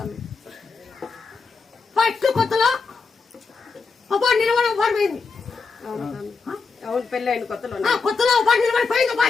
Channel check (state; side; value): quieter; right; 4.7 dB